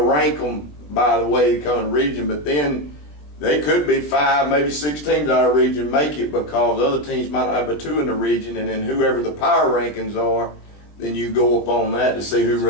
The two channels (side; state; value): right; late; 20 ms